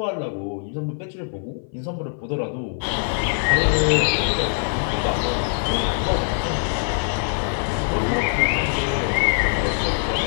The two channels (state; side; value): silent; right; 58 dB below the other